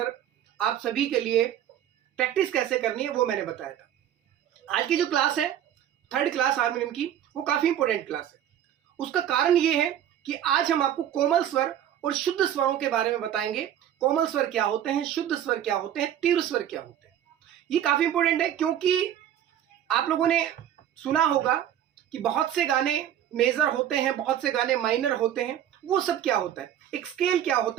आप सभी के लिए प्रैक्टिस कैसे करनी है वो मैंने बताया था। आज की जो क्लास है, थर्ड क्लास हारमोनियम की, वो काफ़ी इंपॉर्टेंट क्लास है। उसका कारण ये है कि आज हम आपको कोमल स्वर और शुद्ध स्वरों के बारे में बताएंगे। कोमल स्वर क्या होते हैं, शुद्ध स्वर क्या होते हैं, तीव्र स्वर क्या होते हैं। ये काफ़ी इंपॉर्टेंट है क्योंकि आप लोगों ने सुना होगा कि बहुत से गाने मेजर होते हैं, बहुत से गाने माइनर होते हैं। वो सब क्या होता है, एक स्केल क्या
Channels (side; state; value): left; quieter; 10.7 dB